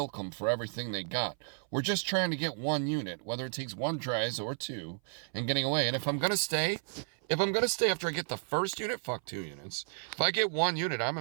them for everything they got. We're just trying to get one unit, whether it takes 1 tries or 2, and getting away. And if I'm going to stay after I get the first unit, fuck 2 units. If I get 1 unit, I'm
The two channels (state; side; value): silent; left; 56 dB below the other